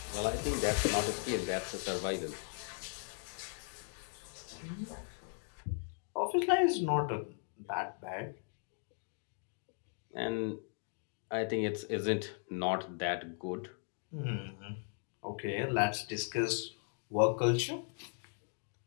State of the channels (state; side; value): silent; right; 53 dB below the other